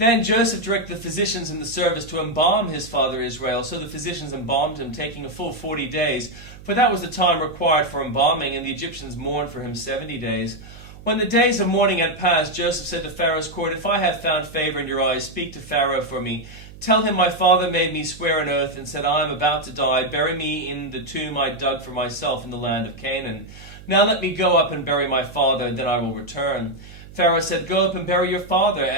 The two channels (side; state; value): right; noise; hum, 18 dB below the sound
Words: Joseph directed the physicians in the service to embalm his father Israel. So the physicians embalmed him, taking a full 40 days, for that was the time required for embalming, and the Egyptians mourned for him 70 days. When the days of mourning had passed, Joseph said to Pharaoh's court, If I have found favor in your eyes, speak to Pharaoh for me. Tell him my father made me swear an oath and said, I am about to die. Bury me in the tomb I dug for myself in the land of Canaan. Now let me go up and bury my father, then I will return. Pharaoh said, Go up and bury your father,